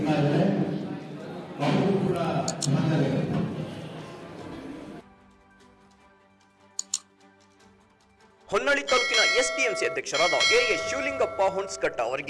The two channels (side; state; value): both; identical; correlation 1.00